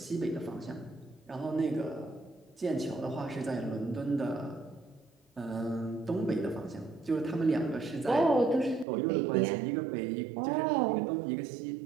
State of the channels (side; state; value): left; drops out; at 8.8 s